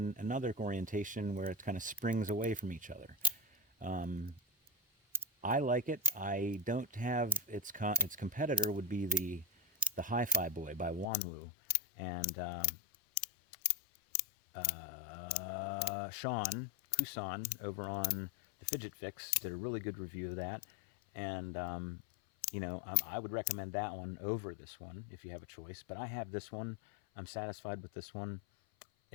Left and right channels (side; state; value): right; drops out; at 11.1 s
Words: another orientation where it kind of springs away from each other. I like it. I don't have its competitor would be the Hi-Fi Boy by Wanwu, and Sean Kusan over on the Fidget Fix did a really good review of that, and I would recommend that one over this one if you have a choice. But I have this one. I'm satisfied with this one.